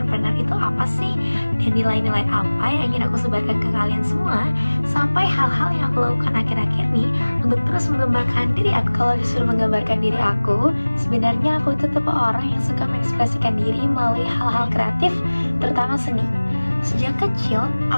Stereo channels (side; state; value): both; inverted; correlation -1.00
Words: itu apa sih, dan nilai-nilai apa yang ingin aku sebarkan ke kalian semua, sampai hal-hal yang aku lakukan akhir-akhir nih untuk terus menggambarkan diri aku. Kalau disuruh menggambarkan diri aku, sebenarnya aku itu tipe orang yang suka mengekspresikan diri melalui hal-hal kreatif, terutama seni. Sejak kecil,